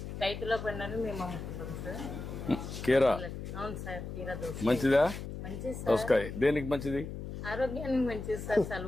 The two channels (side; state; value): left; noise; hum, 8 dB below the sound